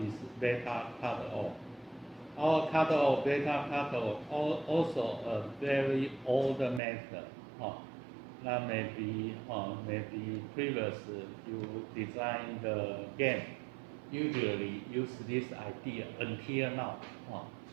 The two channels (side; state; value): left; drops out; at 6.8 s